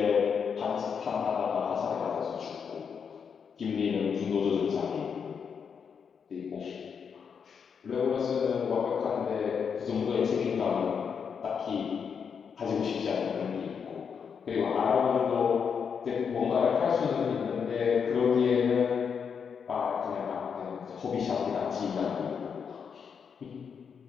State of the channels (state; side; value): quieter; right; 6.6 dB